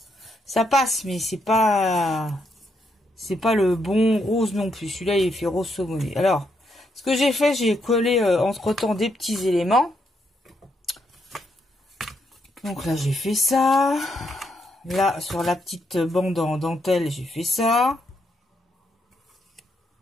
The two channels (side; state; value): both; normal; correlation 0.78